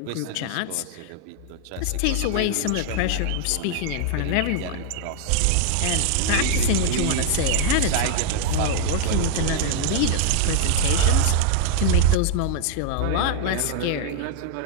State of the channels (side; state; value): both; different; correlation 0.00